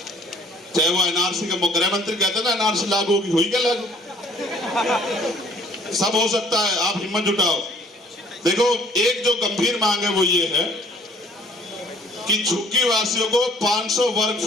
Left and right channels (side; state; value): both; normal; correlation 0.57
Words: चाहे वो एनआरसी का गृह मंत्री कहते हैं ना एनआरसी लागू होगी, हुई क्या लागू? सब हो सकता है, आप हिम्मत जुटाओ। देखो एक जो गंभीर मांग है वो ये है कि झुग्गी वासियों को 500 वर्ग